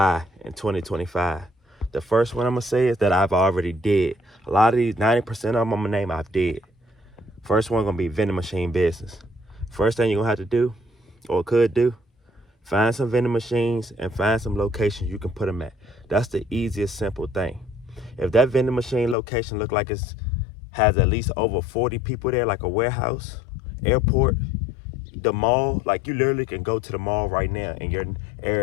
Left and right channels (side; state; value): right; drops out; at 19.2 s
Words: in 2025. The first one I'm gonna say is that I've already did. A lot of these, 90% of them I'm gonna name I've did. First one gonna be vending machine business. First thing you're gonna have to do, or could do, find some vending machines and find some locations you can put them at. That's the easiest, simple thing. If that vending machine location look like it's has at least over 40 people there, like a warehouse, airport, the mall, like you literally can go to the mall right now in your